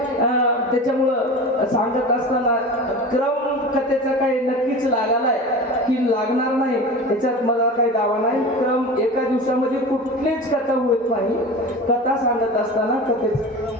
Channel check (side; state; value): both; normal; correlation 0.32